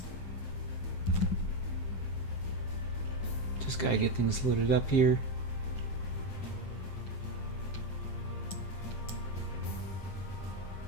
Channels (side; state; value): right; late; 7.5 ms